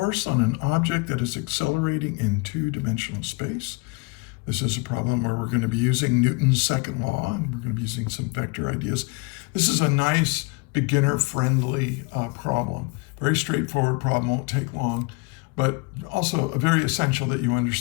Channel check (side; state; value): right; quieter; 27.8 dB